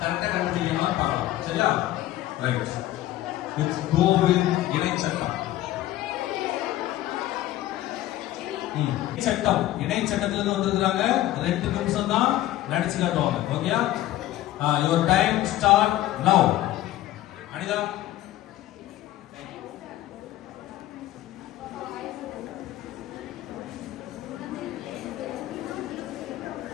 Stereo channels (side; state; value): right; quieter; 14.7 dB